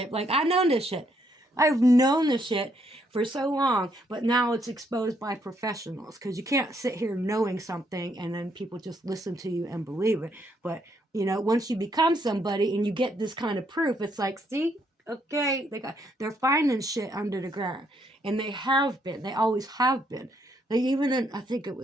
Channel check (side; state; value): both; normal; correlation 0.73